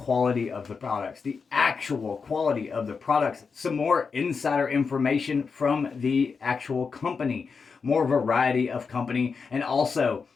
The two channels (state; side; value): quieter; right; 5.3 dB